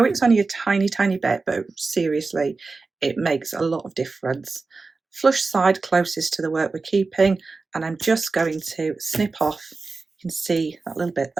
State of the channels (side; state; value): left; quieter; 4.0 dB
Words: it's only a tiny bit, but seriously it makes a lot of difference. Flush side closest to the work we're keeping, and I'm just going to snip off. You can see that little bit